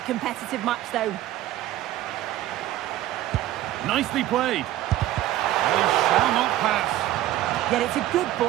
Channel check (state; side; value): quieter; left; 14.1 dB